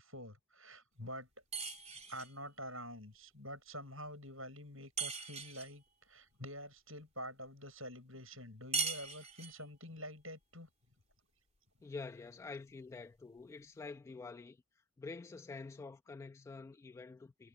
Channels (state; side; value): normal; both; correlation 0.11